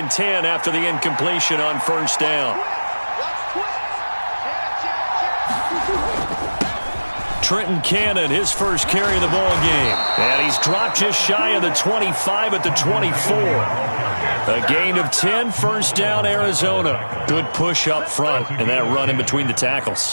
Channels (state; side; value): inverted; both; correlation -1.00